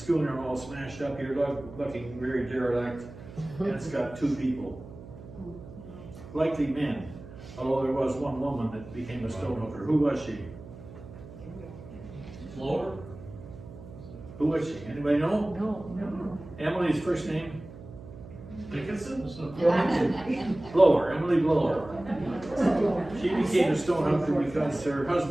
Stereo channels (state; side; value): noise; right; hum, 15 dB below the sound